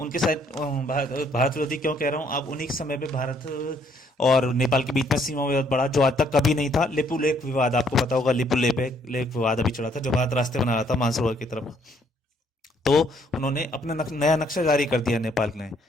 साथ भारत विरोधी क्यों कह रहा हूँ, अब उन्हीं के समय पे भारत और नेपाल के बीच में सीमा विवाद बढ़ा, जो आज तक कभी नहीं था। लिपु लेक विवाद, आपको पता होगा, लिपु लेक विवाद अभी चला था, जो भारत रास्ते बना रहा था मानसरोवर की तरफ। तो उन्होंने अपना नया नक्शा जारी कर दिया नेपाल ने,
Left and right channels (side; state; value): both; normal; correlation 0.67